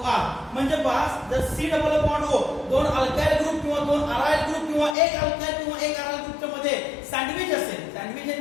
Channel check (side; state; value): right; drops out; at 5.0 s